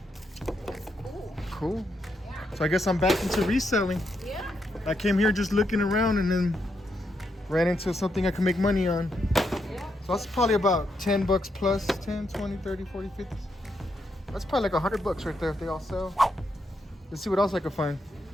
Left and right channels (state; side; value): normal; both; correlation 0.81